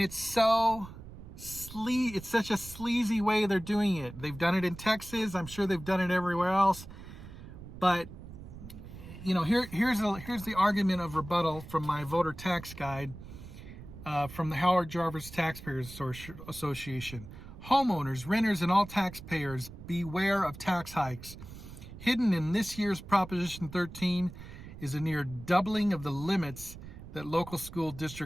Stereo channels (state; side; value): noise; right; rumble, 14 dB below the sound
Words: such a sleazy way they're doing it. They've done it in Texas. I'm sure they've done it everywhere else. But here's the argument of rebuttal from my voter tax guide from the Howard Jarvis Taxpayers Association. Homeowners, renters, and all taxpayers, beware of tax hikes. Hidden in this year's Proposition 13 is a near doubling of the limits that local school